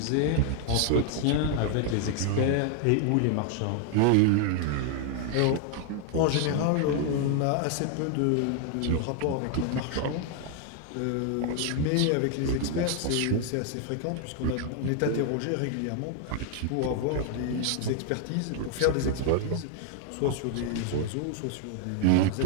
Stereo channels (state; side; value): different; both; correlation 0.00